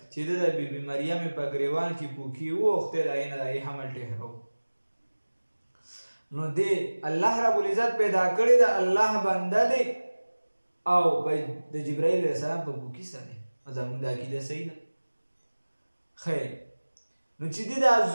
چې د بیبي مریم په ګریوان کې پوکي ووخته د هغې نه د هغې حمل ټهرو. نو دی الله رب العزت پیدا کړی د الله بنده دی او د جبرائیل علیه السلام په پوکي سره. زموږ د عقیده صحیح ده؟ خیر، نو چې دی دا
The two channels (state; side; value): inverted; both; correlation -1.00